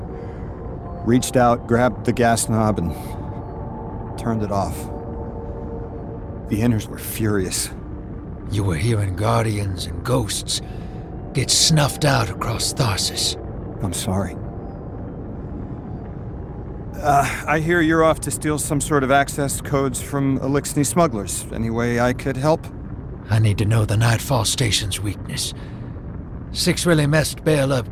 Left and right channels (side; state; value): both; identical; correlation 1.00